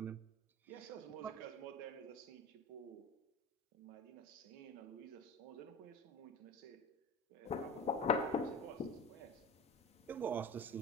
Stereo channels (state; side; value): normal; both; correlation 0.32